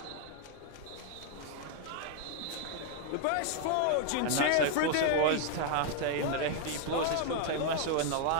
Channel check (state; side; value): different; both; correlation 0.00